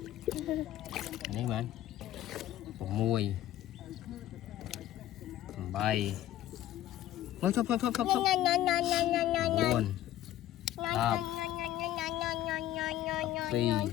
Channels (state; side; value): quieter; right; 13.2 dB